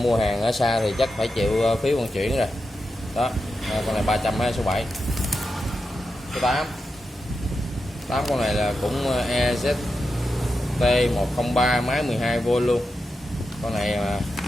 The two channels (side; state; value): both; normal; correlation 0.88